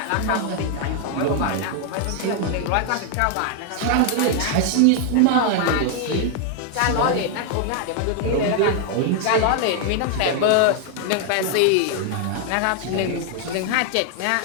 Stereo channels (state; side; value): different; both; correlation 0.00